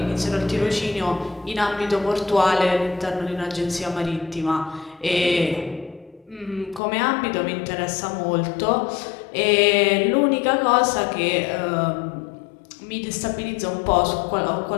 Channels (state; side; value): drops out; right; at 6.8 s